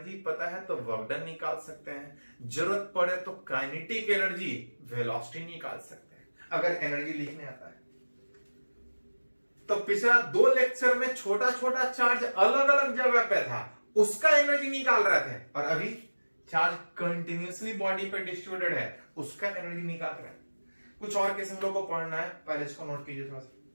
पता है तो वर्क डन निकाल सकते हैं, जरूरत पड़े तो काइनेटिक एनर्जी, वेलोसिटी निकाल सकते हैं, अगर एनर्जी लिखने आता है। तो पिछला 2 लेक्चर में छोटा छोटा चार्ज अलग अलग जगह पे था, उसका एनर्जी निकाल रहे थे, और अभी चार्ज कंटिन्यूअसली बॉडी पे डिस्ट्रीब्यूटेड है, उसका एनर्जी निकाल रहे हैं। कुछ और केस हम लोग को पढ़ना है, पहले इसको नोट कीजिए थोड़ा सा।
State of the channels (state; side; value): inverted; both; correlation -1.00